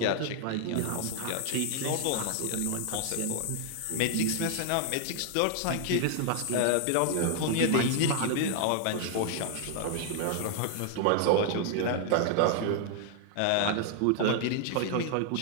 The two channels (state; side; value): different; both; correlation 0.00